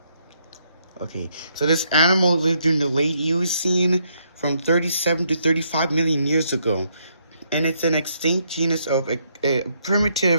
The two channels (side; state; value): both; inverted; correlation -0.74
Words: Okay, so this animal lived during the late Eocene from 37 to 35 million years ago. And it's an extinct genus of a